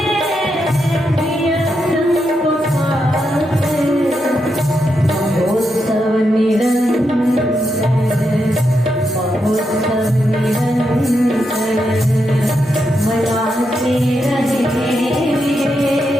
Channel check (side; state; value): both; normal; correlation 0.84